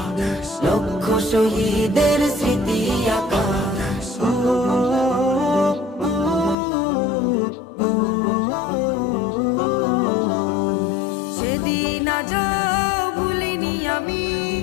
লক্ষ শহীদের স্মৃতি আঁকা। সেদিন আজ ভুলিনি আমি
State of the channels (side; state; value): right; drops out; at 6.6 s